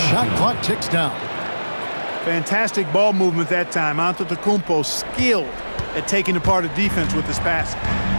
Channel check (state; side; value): inverted; both; correlation -1.00